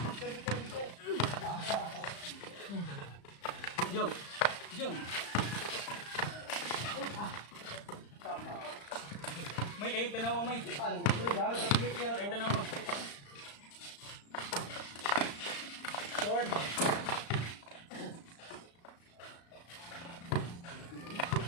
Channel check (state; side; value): late; right; 35 ms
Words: May kayo tanawa may. Kayo tanawa. Short.